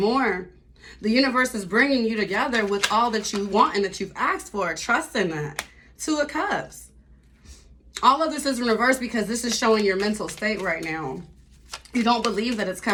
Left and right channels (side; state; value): both; identical; correlation 1.00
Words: The universe is bringing you together with all that you want and that you've asked for. Trust in that. Two of Cups. All of this is in reverse because this is showing your mental state right now. You don't believe that it's